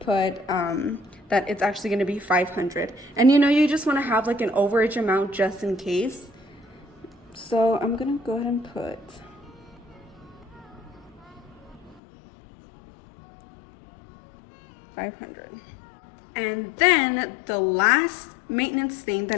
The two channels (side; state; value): right; drops out; at 12.0 s